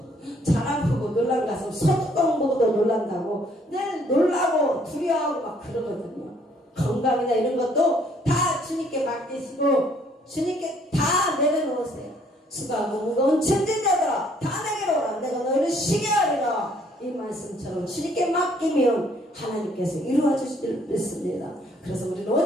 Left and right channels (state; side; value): normal; both; correlation 0.64